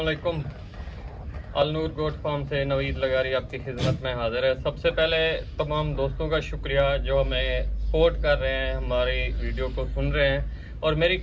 Al Noor goat farm से नवीद लगारी आपकी खिदमत में हाजिर है। सबसे पहले तमाम दोस्तों का शुक्रिया जो हमें सपोर्ट कर रहे हैं, हमारी वीडियो को सुन रहे हैं। और मेरी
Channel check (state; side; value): identical; both; correlation 1.00